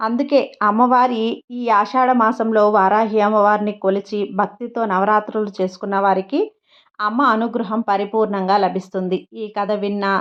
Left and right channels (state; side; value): identical; both; correlation 1.00